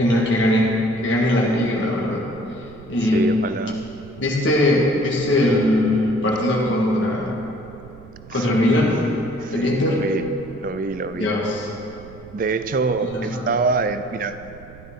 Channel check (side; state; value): right; noise; rumble, 19 dB below the sound